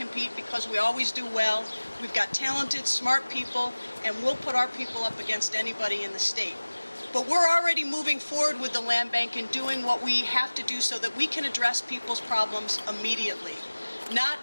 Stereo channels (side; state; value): both; inverted; correlation -1.00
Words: because we always do well. We've got talented, smart people, and we'll put our people up against anybody in the state. But we're already moving forward with the land bank and doing what we have to do so that we can address people's problems immediately.